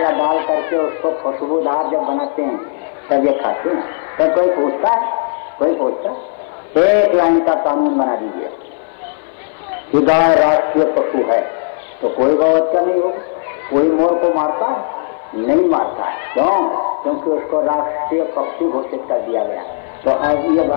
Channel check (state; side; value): silent; right; 59 dB below the other